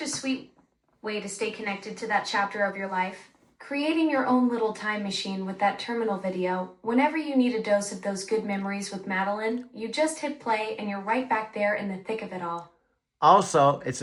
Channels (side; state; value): both; identical; correlation 1.00